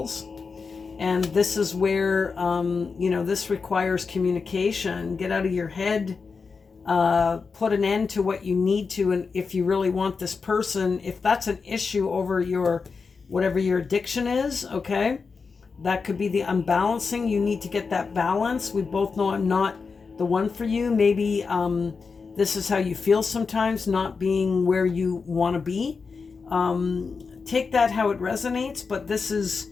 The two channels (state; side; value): quieter; right; 5.0 dB